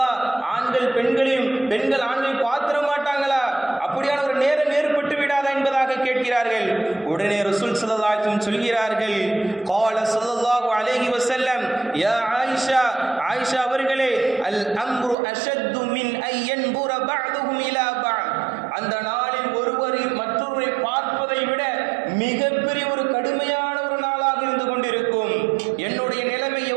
ஆண்கள் பெண்களையும் பெண்கள் ஆண்களை பார்த்திட மாட்டாங்களா? அப்படியான ஒரு நேரம் ஏற்பட்டு விடாதா என்பதாக கேட்கிறார்கள். உடனே ரசூல் ஸல்லல்லாஹு அலைஹி வஸல்லம் சொல்கிறார்கள், قال ஸல்லல்லாஹு அலைஹி வஸல்லம், யா ஆயிஷா, ஆயிஷா அவர்களே, அல் அம்ரு அஷத்து மின் ஐ யன்புர பஅதுஹும் இலா பஅத், அந்த நாளில் ஒருவர் மற்றொருவரை பார்ப்பதை விட மிகப்பெரிய ஒரு கடுமையான ஒரு நாளாக இருந்து கொண்டிருக்கும். என்னுடைய நிலைமை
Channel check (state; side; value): drops out; left; at 15.2 s